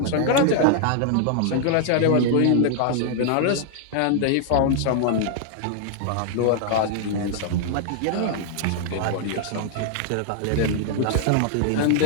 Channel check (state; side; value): different; both; correlation 0.00